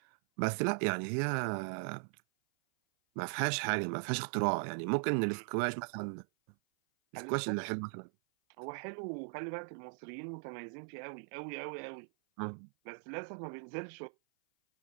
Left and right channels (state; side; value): silent; left; 52 dB below the other